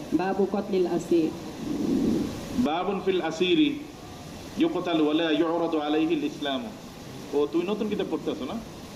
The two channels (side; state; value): both; identical; correlation 1.00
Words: বাবু কতলিল আসির। বাবুন ফিল আসিরি ইউকতাল ওয়ালা ইউরাদু আলাইহিল ইসলাম। ও তুই নতুন কিতাব পড়তে আছো না?